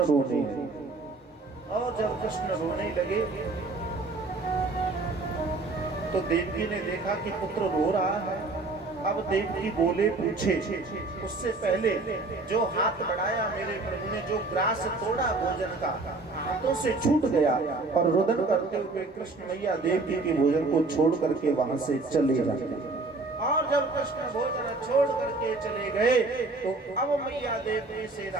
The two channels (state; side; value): quieter; left; 3.4 dB